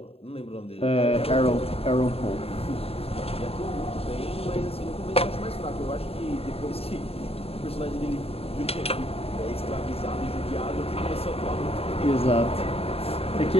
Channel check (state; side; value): late; right; 0.28 ms